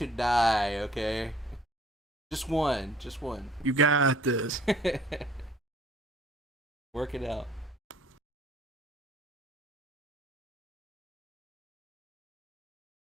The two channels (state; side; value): normal; both; correlation 0.56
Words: die, okay? Just one. Just one. You got this. Work it out.